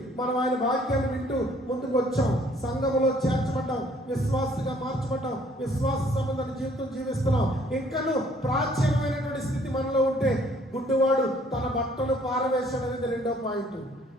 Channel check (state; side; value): normal; both; correlation 0.61